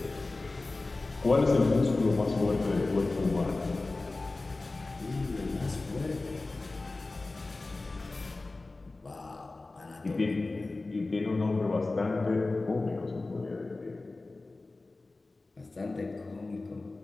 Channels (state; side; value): quieter; right; 3.3 dB